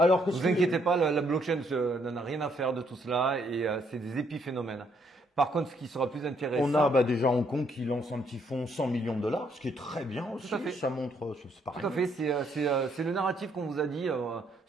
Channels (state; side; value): normal; both; correlation 0.71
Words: que vous inquiétez pas, la blockchain n'en a rien à faire de tout cela et c'est des épiphénomènes. Par contre, ce qui sera plus intéressant… On a déjà Hong Kong qui lance un petit fonds 100 millions de dollars, ce qui est très bien aussi. Tout à fait. Ça montre… c'est pareil. Tout à fait, c'est le narratif qu'on vous a dit.